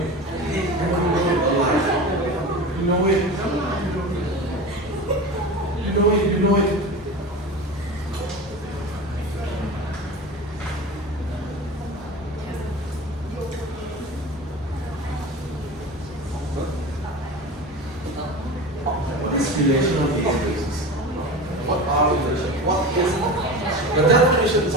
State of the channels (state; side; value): normal; both; correlation 0.30